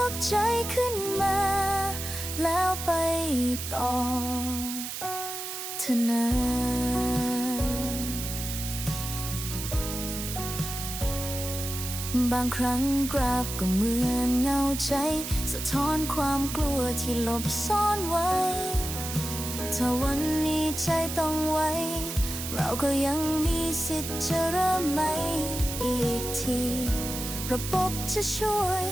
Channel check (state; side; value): noise; right; hiss, 6 dB below the sound